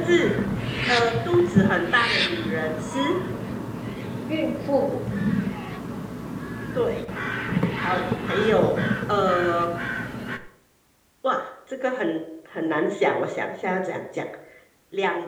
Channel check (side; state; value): both; identical; correlation 1.00